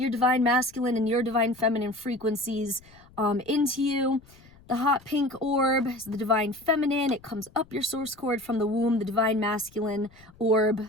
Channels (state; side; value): noise; left; rumble, 26 dB below the sound